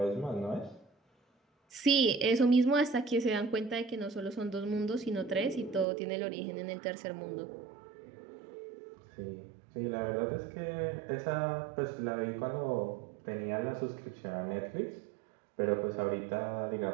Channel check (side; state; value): left; drops out; at 5.9 s